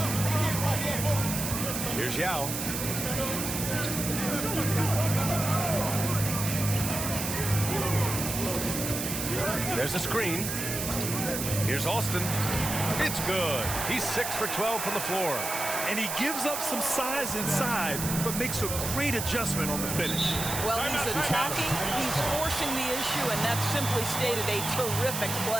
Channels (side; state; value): right; noise; hiss, 4 dB below the sound